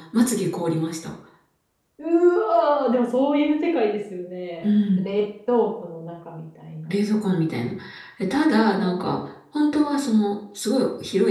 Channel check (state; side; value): identical; both; correlation 1.00